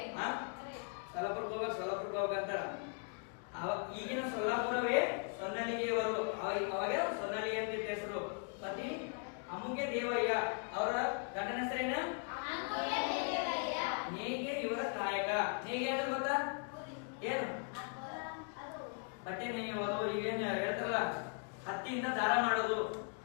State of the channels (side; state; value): right; quieter; 40.0 dB